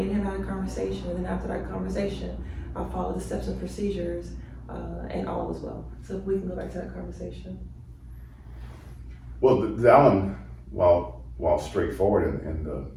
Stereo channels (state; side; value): identical; both; correlation 1.00